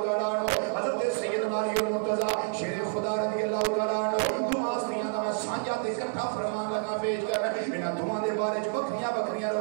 عنہ حضرت سیدنا علی المرتضیٰ شیر خدا رضی اللہ تعالیٰ عنہ دعا استیاں دا میں سانجا تے اکٹھا فرمان لگا پیش کر انہاں دعاں دے بارے بکریاں بکریاں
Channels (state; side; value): silent; left; 57 dB below the other